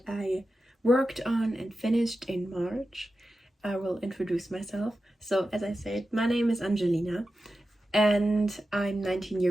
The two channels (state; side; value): normal; both; correlation 0.92